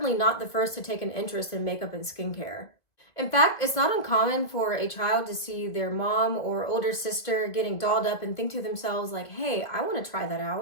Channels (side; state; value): right; late; 2.0 ms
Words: not the first to take an interest in makeup and skincare. In fact, it's not uncommon for a child to see their mom or older sister getting dolled up and think to themselves like, hey, I want to try that